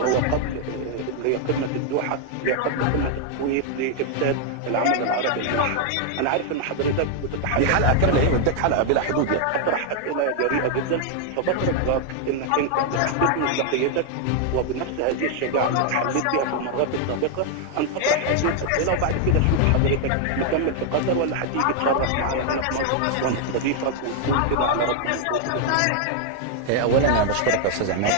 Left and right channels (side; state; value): both; different; correlation 0.00